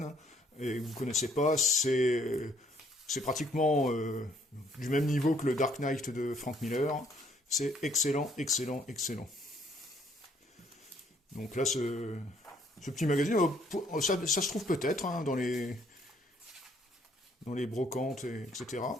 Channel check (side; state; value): both; normal; correlation 0.65